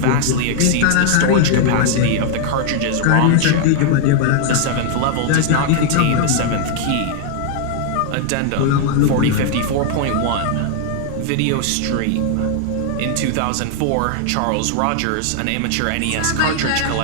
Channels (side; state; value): both; different; correlation 0.00